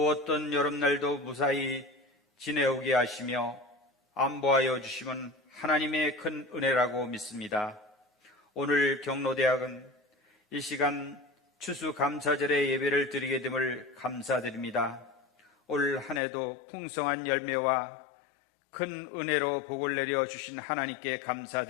여름날도 무사히 지내오게 하시며 안보하여 주심은 하나님의 큰 은혜라고 믿습니다. 오늘 경로대학은 이 시간 추수감사절의 예배를 드리게 됨을 감사드립니다. 올 한 해도 풍성한 열매와 큰 은혜로 복을 내려 주신 하나님께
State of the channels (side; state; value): right; drops out; at 16.2 s